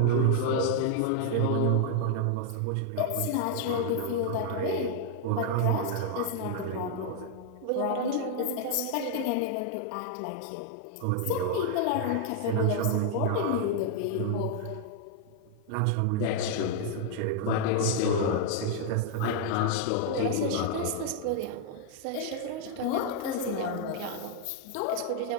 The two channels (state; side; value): different; both; correlation -0.01